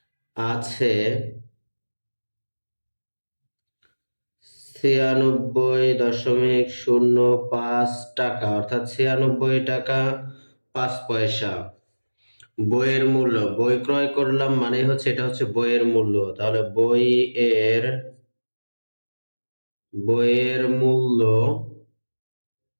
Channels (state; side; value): inverted; both; correlation -1.00